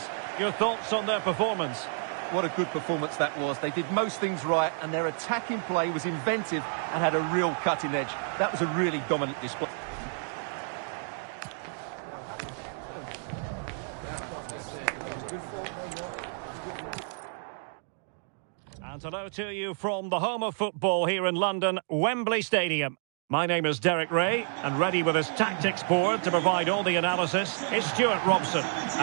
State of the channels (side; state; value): left; silent; 58 dB below the other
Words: Your thoughts on their performance? What a good performance that was. They did most things right, and their attacking play was inventive and had a real cutting edge. That was a really dominant display. hello to you from the home of football here in London, Wembley Stadium. My name is Derek Ray, and ready with his tactics board to provide all the analysis is Stuart Robson.